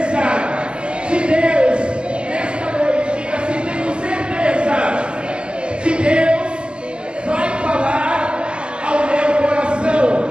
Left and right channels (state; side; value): late; left; 0.050 ms